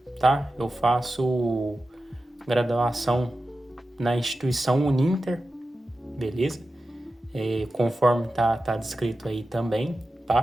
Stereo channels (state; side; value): normal; both; correlation 0.93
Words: tá? Eu faço graduação na instituição Uninter, beleza? Conforme tá descrito aí também,